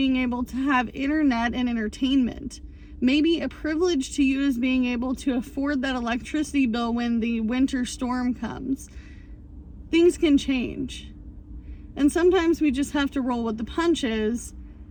able to have internet and entertainment. Maybe a privilege to you is being able to afford that electricity bill when the winter storm comes. Things can change. And sometimes we just have to roll with the punches.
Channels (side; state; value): both; identical; correlation 1.00